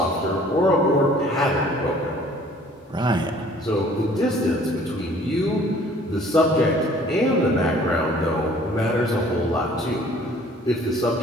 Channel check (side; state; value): both; normal; correlation 0.54